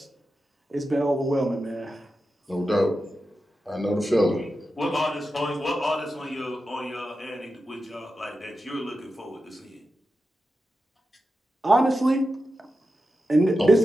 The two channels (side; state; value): both; normal; correlation 0.91